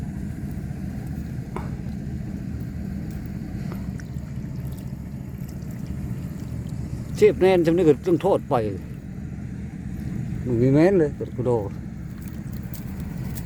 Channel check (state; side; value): identical; both; correlation 1.00